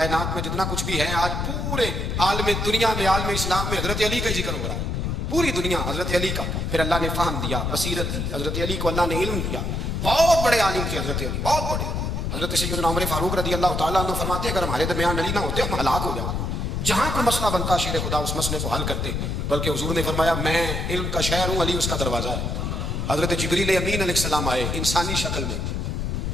میں جتنا کچھ بھی ہے، آج پورے عالم دنیا میں، عالم اسلام میں حضرت علی کا ذکر ہو رہا ہے، پوری دنیا حضرت علی کا۔ پھر اللہ نے فہم دیا، بصیرت دی، حضرت علی کو اللہ نے علم دیا، بہت بڑے عالم تھے حضرت علی، بہت بڑے۔ حضرت سیدنا عمر فاروق رضی اللہ تعالیٰ عنہ فرماتے ہیں اگر ہمارے درمیان علی نہ ہوتے ہم ہلاک ہو جاتے، جہاں کوئی مسئلہ بنتا شیر خدا اس مسئلے کو حل کرتے، بلکہ حضور نے فرمایا میں علم کا شہر ہوں، علی اس کا دروازہ ہے۔ حضرت جبریل امین علیہ السلام آئے انسانی شکل میں،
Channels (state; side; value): noise; left; rumble, 1 dB below the sound